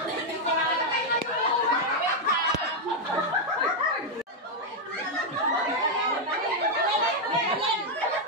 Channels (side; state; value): both; normal; correlation 0.01